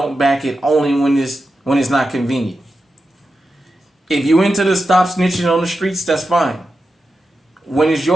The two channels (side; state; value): both; normal; correlation 0.90